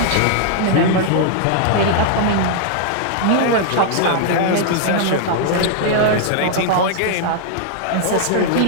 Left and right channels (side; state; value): both; different; correlation 0.00